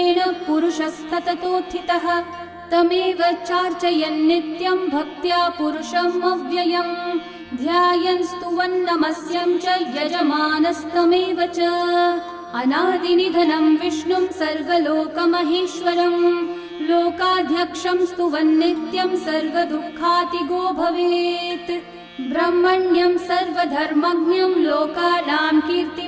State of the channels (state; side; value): identical; both; correlation 1.00